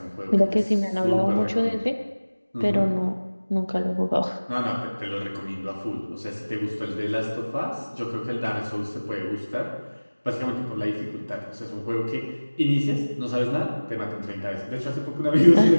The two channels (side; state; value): both; inverted; correlation -1.00